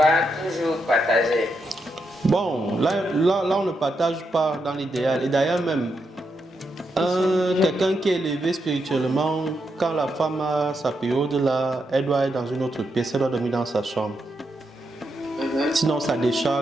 toujours partager? Bon, là on ne partage pas dans l'idéal. Et d'ailleurs même, quelqu'un qui est élevé spirituellement, quand la femme a sa période là, elle doit être dans une autre pièce, elle doit dormir dans sa chambre. Sinon ça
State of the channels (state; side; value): normal; both; correlation 0.83